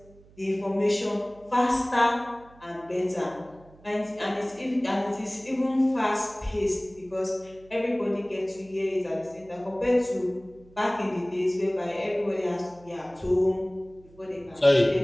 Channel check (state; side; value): noise; right; hum, 25 dB below the sound